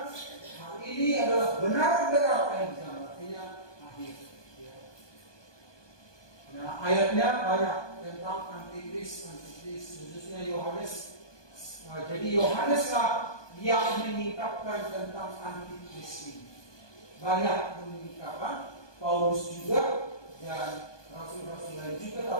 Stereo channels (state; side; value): late; right; 1.2 ms